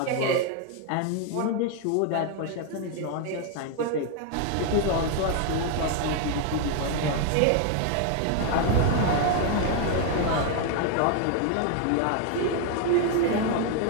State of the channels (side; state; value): both; different; correlation 0.01